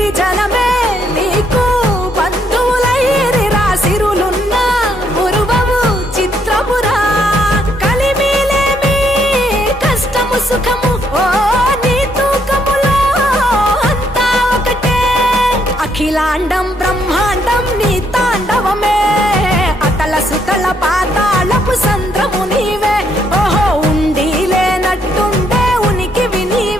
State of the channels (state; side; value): normal; both; correlation 0.72